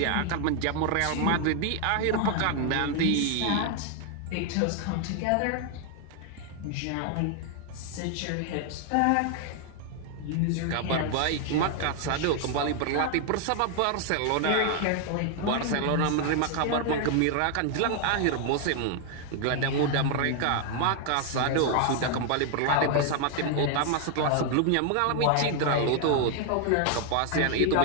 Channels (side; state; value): both; different; correlation 0.00